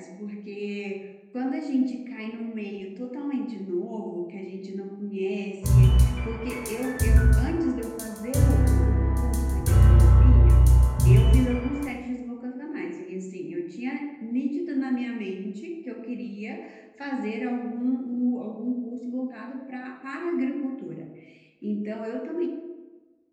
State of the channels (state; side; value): identical; both; correlation 1.00